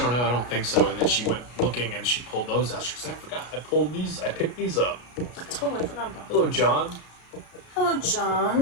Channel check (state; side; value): late; right; 33 ms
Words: don't know, I don't think so. And then she went looking and she pulled those out. She said, I forgot, I picked these up. I totally forgot about them. Hello, John. Hello,